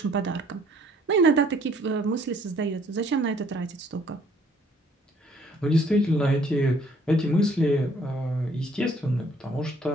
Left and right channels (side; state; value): both; normal; correlation 0.61